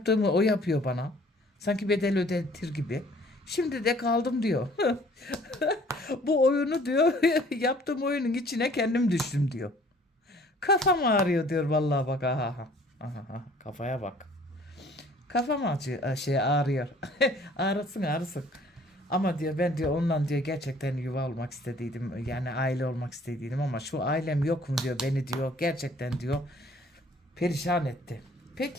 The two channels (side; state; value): both; normal; correlation 0.55